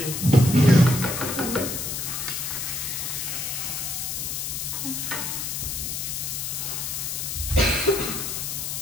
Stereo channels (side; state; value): left; noise; hiss, 3 dB below the sound